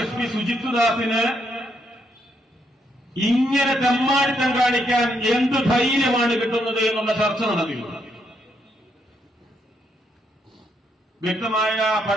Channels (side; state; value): both; normal; correlation 0.76